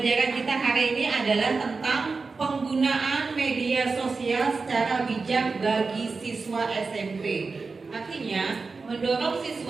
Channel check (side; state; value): left; quieter; 4.3 dB